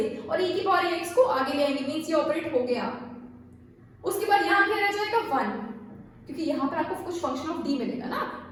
और e की पावर ax को आगे ले आएंगे मींस ये ऑपरेट हो गया. उसके बाद यहाँ क्या रह जाएगा 1 क्योंकि यहाँ पर आपको कुछ फंक्शन ऑफ d मिलेगा ना,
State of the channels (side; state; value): both; identical; correlation 1.00